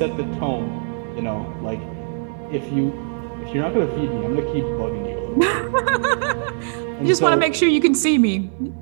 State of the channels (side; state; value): left; silent; digital silence